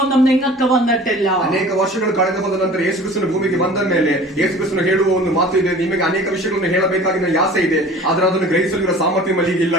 ഒന്നും നിങ്ങൾക്ക് വന്നിട്ടില്ല. ಅನೇಕ ವರ್ಷಗಳು ಕಳೆದು ಹೋದ ನಂತರ ಯೇಸು ಕ್ರಿಸ್ತನ ಭೂಮಿಗೆ ಬಂದ ಮೇಲೆ ಯೇಸು ಕ್ರಿಸ್ತನು ಹೇಳುವ ಒಂದು ಮಾತು ಇದೆ, ನಿಮಗೆ ಅನೇಕ ವಿಷಯಗಳನ್ನು ಹೇಳಬೇಕಾಗಿನ ಆಸೆ ಇದೆ, ಆದರೆ ಅದನ್ನು ಗ್ರಹಿಸಲಿರುವ ಸಾಮರ್ಥ್ಯ ಮಲ್ಲಿಗೆ ಇಲ್ಲ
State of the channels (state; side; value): normal; both; correlation 0.44